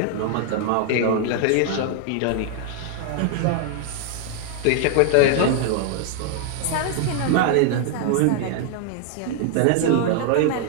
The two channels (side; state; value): both; different; correlation 0.00